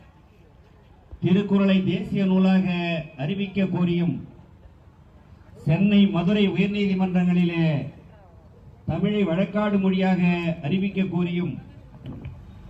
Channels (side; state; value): both; identical; correlation 1.00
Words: திருக்குறளை தேசிய நூலாக அறிவிக்க கோரியும் சென்னை மதுரை உயர்நீதிமன்றங்களிலே தமிழை வழக்காடு மொழியாக அறிவிக்க கோரியும்